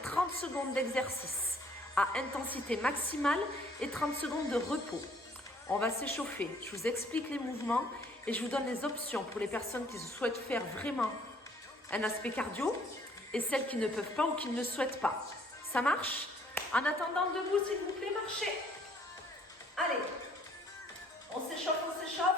30 secondes d'exercice à intensité maximale et 30 secondes de repos. On va s'échauffer, je vous explique les mouvements et je vous donne les options pour les personnes qui souhaitent faire vraiment un aspect cardio et celles qui ne peuvent pas ou qui ne le souhaitent pas. Ça marche? En attendant, debout s'il vous plaît, marchez. Allez, on s'échauffe, on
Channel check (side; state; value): both; normal; correlation 0.61